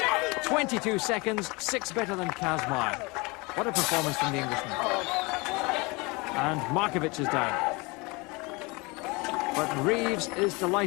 22 seconds, 6 better than Kazmaier. What a performance from the Englishman. And Markovic is down. But Reeves is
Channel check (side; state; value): right; quieter; 26.4 dB